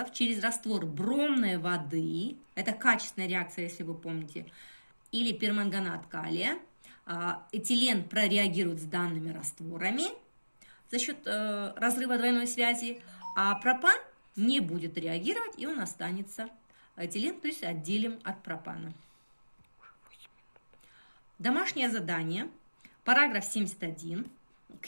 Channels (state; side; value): inverted; both; correlation -1.00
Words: через раствор бромной воды, это качественная реакция, если вы помните, или перманганат калия. Этилен прореагирует с данными растворами за счет разрыва двойной связи, а пропан не будет реагировать, и он останется этилен, то есть отделим от пропана. Домашнее задание, параграф 71,